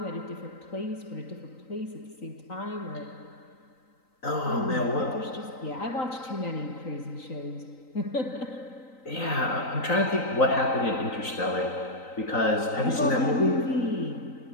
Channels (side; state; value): right; late; 3.9 ms